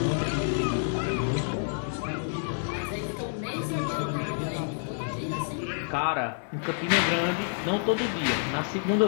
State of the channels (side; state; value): right; silent; digital silence